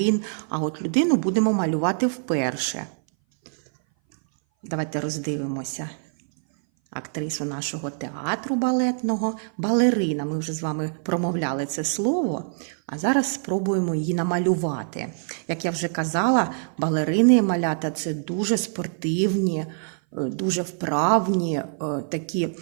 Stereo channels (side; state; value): left; silent; 58 dB below the other